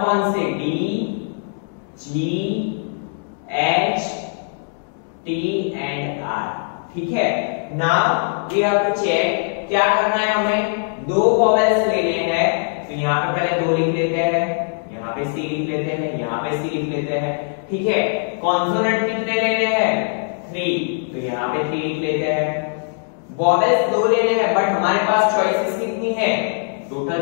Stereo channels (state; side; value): silent; right; digital silence